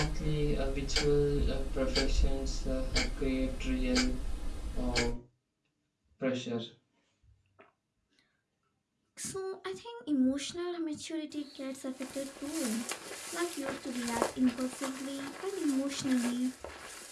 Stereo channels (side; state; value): both; identical; correlation 1.00